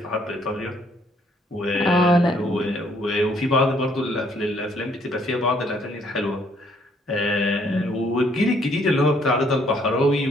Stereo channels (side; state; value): both; normal; correlation 0.66